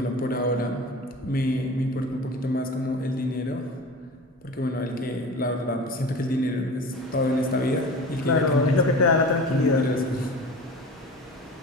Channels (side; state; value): both; normal; correlation 0.35